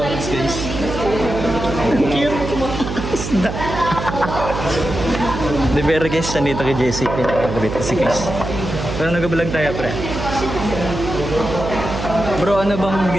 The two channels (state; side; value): noise; right; hum, 6 dB below the sound